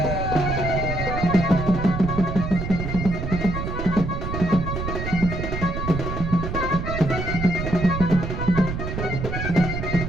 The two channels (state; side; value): noise; right; rumble, 4 dB below the sound